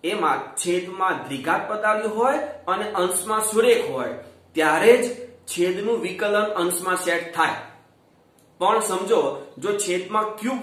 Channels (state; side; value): identical; both; correlation 1.00